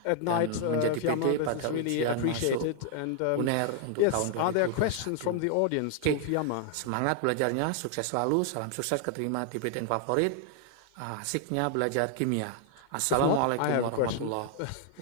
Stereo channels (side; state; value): both; different; correlation 0.00